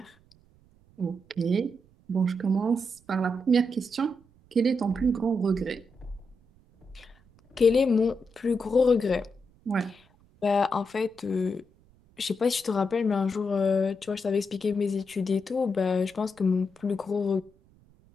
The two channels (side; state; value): right; noise; rumble, 30 dB below the sound